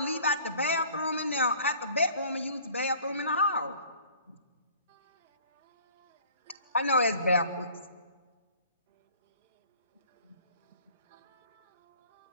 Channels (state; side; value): inverted; both; correlation -0.51